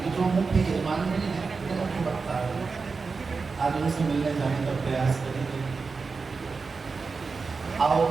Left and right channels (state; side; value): quieter; left; 4.6 dB